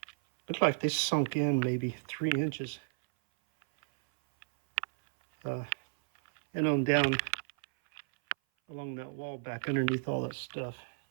like they sunk in maybe 3 inches. And on down along that wall back underneath all that stuff.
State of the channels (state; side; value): silent; left; 56 dB below the other